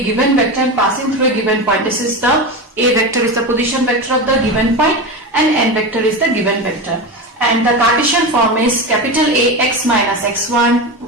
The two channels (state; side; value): normal; both; correlation 0.21